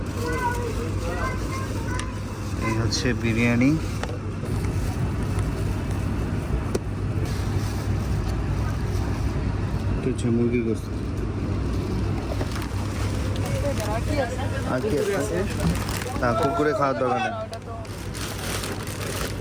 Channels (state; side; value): identical; both; correlation 1.00